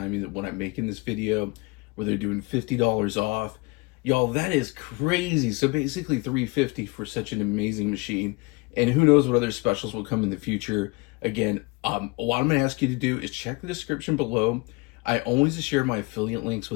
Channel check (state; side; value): quieter; right; 26.8 dB